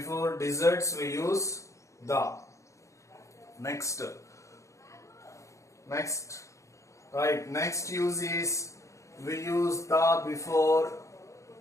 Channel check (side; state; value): right; late; 0.15 ms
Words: deserts we use the. Next, right? Next use is we use the before